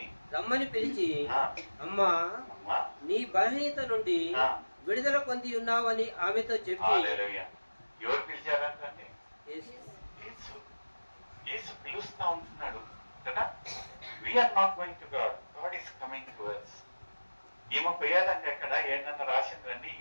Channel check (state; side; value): inverted; both; correlation -1.00